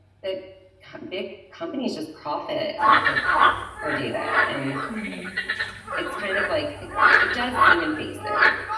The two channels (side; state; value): both; identical; correlation 1.00